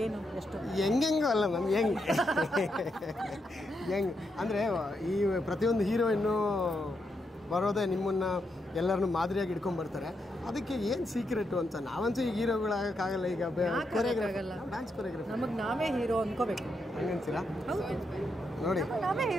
ಏನು ಎಷ್ಟು ಹೆಂಗೆಂಗೋ ಅಲ್ಲ ಮ್ಯಾಮ್, ಹೆಂಗೆ ಅಂದರೆ ಈ ಪ್ರತಿಯೊಂದು ಹೀರೋಯಿನ್ನು ಬರೋದೇ ನಿಮ್ಮನ್ನು ಎಲ್ಲರನ್ನು ಮಾದರಿಯಾಗಿ ಇಟ್ಕೊಂಡ್ಬರ್ತಾರೆ. ಅದಕ್ಕೆ ಏನು ಸೀಕ್ರೆಟು ಅಂತ ನಾವಂತೂ ಈಗ ಹೀರೋಗಳಾಗಕ್ಕಾಗಲ್ಲ. ಈಗ ಡ್ಯಾನ್ಸ್ ಕೊರಿಯೋಗ್ರಫಿ ನಮಗೆ ನಾವೇ ಹೀರೋ ಅನ್ಕೋಬೇಕು. ಹಂಗನ್ಸಿರಾ? ಹೌದು, ನೋಡಿ ನಾವೇ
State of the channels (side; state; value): both; normal; correlation 0.82